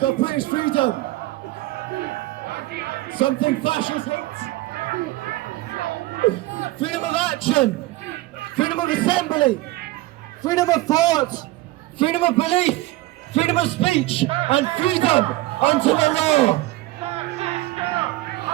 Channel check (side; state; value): left; quieter; 18.3 dB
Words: of British freedom. Something fascists hate. Freedom of action, freedom of assembly, freedom of thought, freedom of belief, freedom of speech, and freedom unto the law.